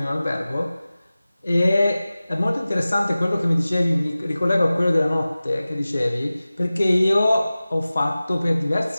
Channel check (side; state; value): both; inverted; correlation -0.97